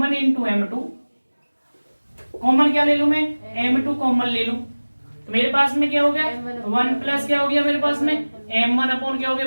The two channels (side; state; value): both; inverted; correlation -1.00